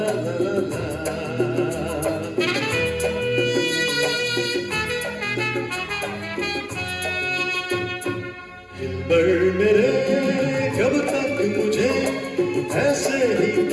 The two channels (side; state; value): both; identical; correlation 1.00